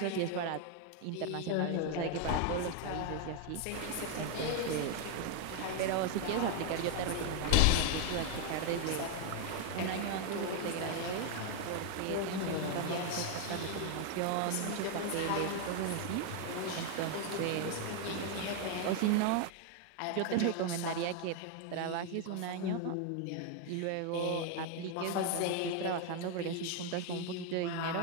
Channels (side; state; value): both; different; correlation 0.00